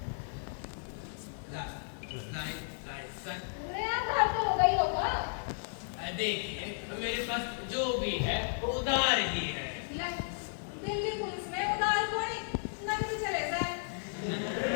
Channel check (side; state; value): right; silent; digital silence